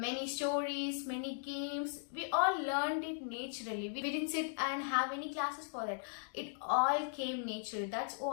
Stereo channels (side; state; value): right; silent; digital silence